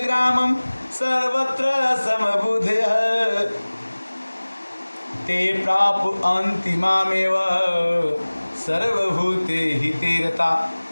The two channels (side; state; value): both; inverted; correlation -1.00